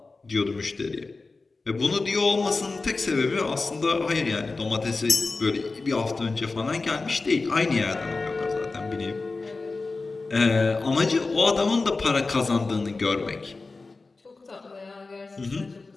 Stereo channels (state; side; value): quieter; right; 3.7 dB